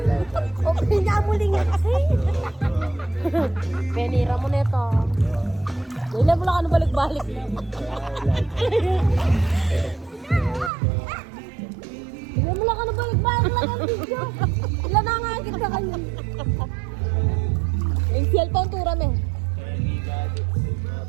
O pinamuli nga kasi. Penira mo nito. Dahil mo lang ano balik-balik. Dahil mo lang ano balik-balik lang ang video. Ilan na nga kita kayo. Yung cellphone tura me.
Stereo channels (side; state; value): left; drops out; at 10.7 s